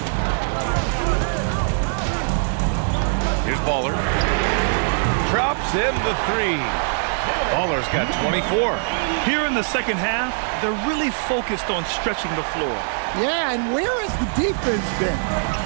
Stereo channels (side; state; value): left; silent; digital silence